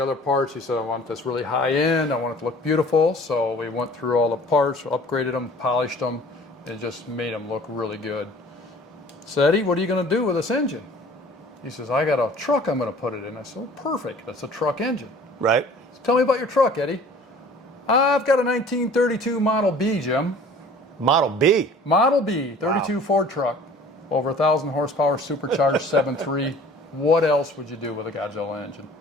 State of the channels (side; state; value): both; normal; correlation 0.48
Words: other parts. He said, I want this really high end. I want it to look beautiful. So we went through all the parts, upgraded them, polished them, and just made them look really good. So Eddie, what are you going to do with this engine? He says, I got a truck I'm going to put it in. I said, well, perfect. That's a truck engine. Right. So tell me about your truck, Eddie. I've got a 1932 Model B, Jim. Model B? Model B, 32 wow. Ford truck. Over 1,000 horsepower, supercharged 7.3. What else would you do with a Godzilla engine?